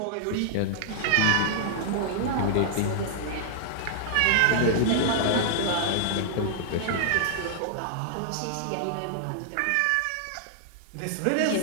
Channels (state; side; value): different; both; correlation -0.01